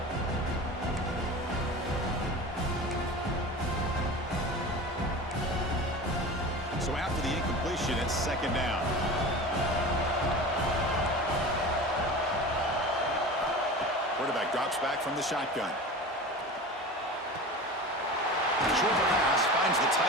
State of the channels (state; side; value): normal; both; correlation 0.33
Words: So after the incompletion, it's second down. Quarterback drops back from the shotgun. Short pass finds the